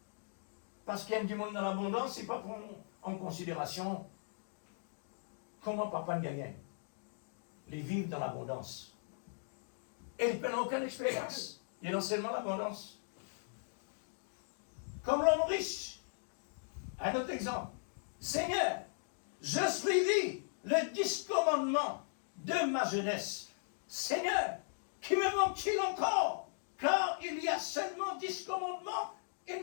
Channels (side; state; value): right; silent; digital silence